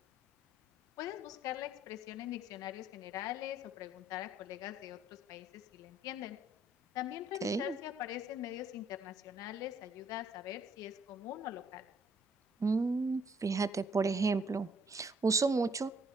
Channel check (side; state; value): both; normal; correlation 0.64